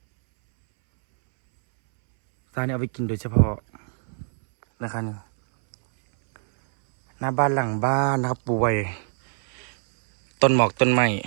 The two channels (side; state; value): left; silent; 63 dB below the other